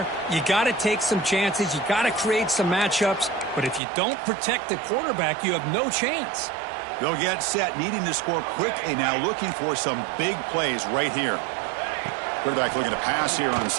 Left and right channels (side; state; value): left; drops out; at 3.8 s